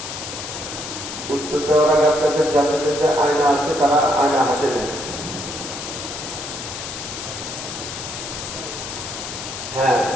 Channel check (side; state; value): left; noise; hiss, 8 dB below the sound